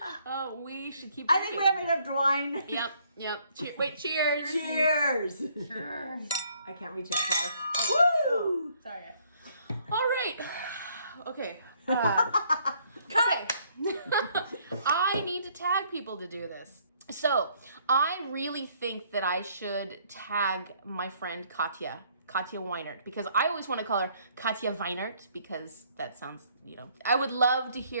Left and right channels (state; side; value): inverted; both; correlation -0.65